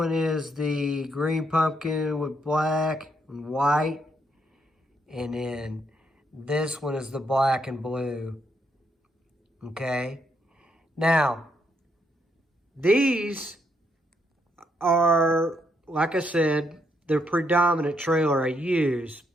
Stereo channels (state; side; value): normal; both; correlation 0.76